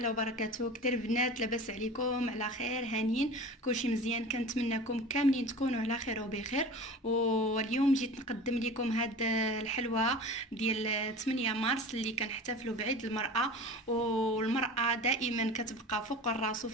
وبركاته. كتير بنات، لاباس عليكم؟ على خير؟ هانيين؟ كلشي مزيان؟ كنتمنىكم كاملين تكونوا على خير وبخير. واليوم جيت نقدم لكم هاد الحلوى ديال 8 مارس اللي كنحتفلوا بعيد المرأة. والمرأة دائما كتبقى فوق الراس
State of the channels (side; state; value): both; normal; correlation 0.36